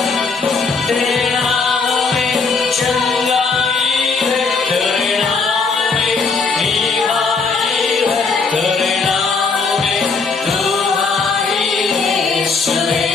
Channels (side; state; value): right; quieter; 4.7 dB